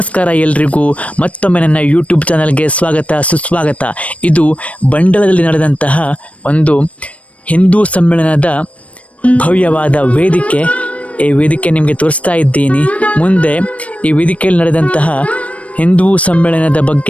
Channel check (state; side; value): late; right; 0.065 ms